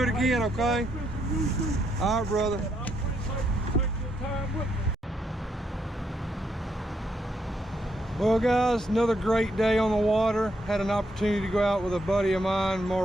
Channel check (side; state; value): both; normal; correlation 0.77